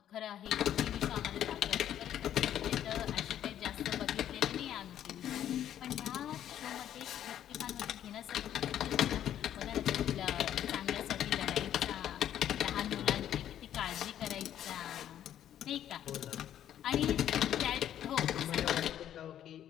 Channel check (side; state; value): right; quieter; 10.9 dB